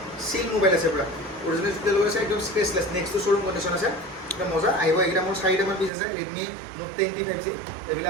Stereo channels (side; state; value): left; drops out; at 5.9 s